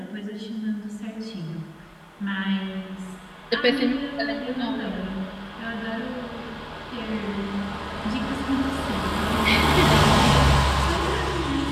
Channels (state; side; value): identical; both; correlation 1.00